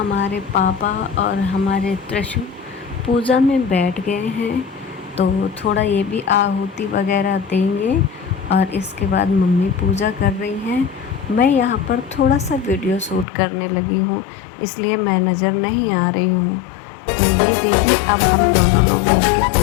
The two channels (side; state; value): right; drops out; at 13.2 s